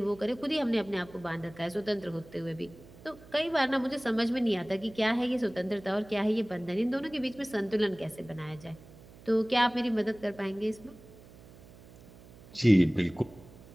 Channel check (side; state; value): right; noise; hum, 21 dB below the sound